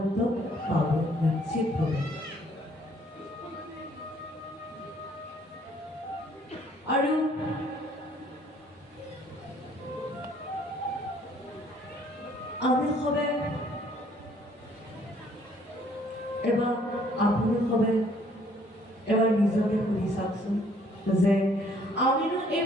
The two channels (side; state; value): both; normal; correlation 0.62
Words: পাব নিশ্চিতভাৱে। আৰু আমি সবে এবাৰ আপুনি সবে এবাৰ নিজকে সুধি চাওকচোন যে আমিনো এই